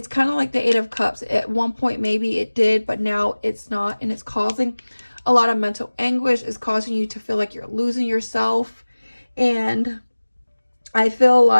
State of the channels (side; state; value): both; inverted; correlation -1.00